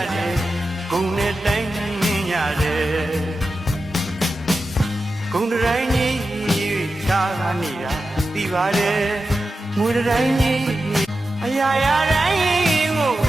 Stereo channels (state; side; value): normal; both; correlation 0.91